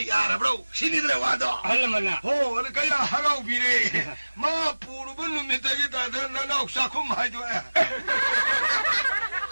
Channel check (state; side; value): inverted; both; correlation -1.00